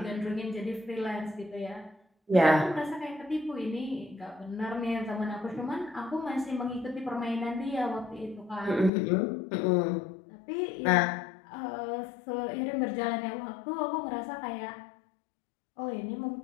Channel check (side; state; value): right; drops out; at 8.9 s